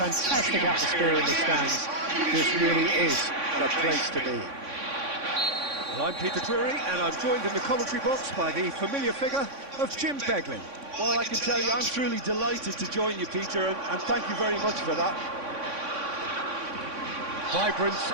atmosphere in the stands. This really is a place to be. Well, I'm Peter Drury, and I'm joined in the commentary box by the familiar figure of Jim Beglin. Well, I can tell you, I'm truly delighted to join you, Peter, and thank you very much for that. Vibrant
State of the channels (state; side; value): late; left; 3.6 ms